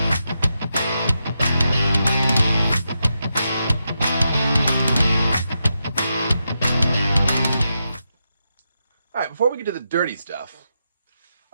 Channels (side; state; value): both; inverted; correlation -0.86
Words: All right, before we get to the dirty stuff,